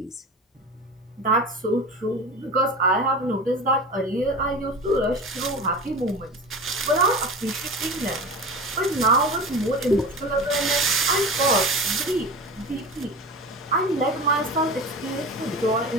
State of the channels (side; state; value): both; normal; correlation 0.31